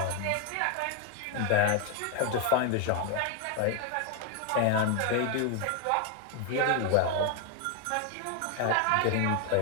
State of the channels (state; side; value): different; both; correlation 0.01